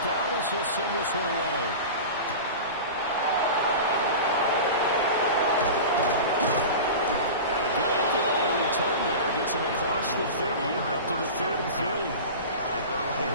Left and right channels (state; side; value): inverted; both; correlation -0.31